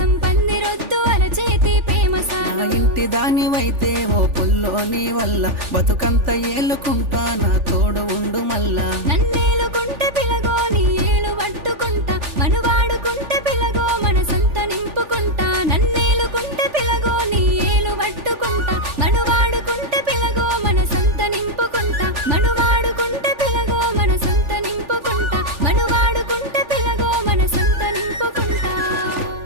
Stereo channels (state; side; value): late; left; 3.4 ms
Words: పందిరొద్దు అరచేతి ప్రేమ నా సాలు ఇంటి దానివైతే ఓ పుల్లోని వల్ల బతుకంత ఏలుకుంటా నా తోడు ఉండు మల్లా నన్నేలుకుంటే పిలగో నీ ఏలు పట్టుకుంటా మనువాడుకుంటే పిలగో మనసంత నింపుకుంటా నన్నేలుకుంటే పిలగో నీ ఏలు పట్టుకుంటా మనువాడుకుంటే పిలగో మనసంత నింపుకుంటా మనువాడుకుంటే పిలగో మనసంత నింపుకుంటా మనువాడుకుంటే పిలగో మనసంత నింపుకుంటా